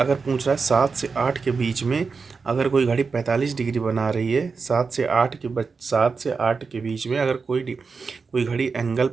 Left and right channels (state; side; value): quieter; left; 4.9 dB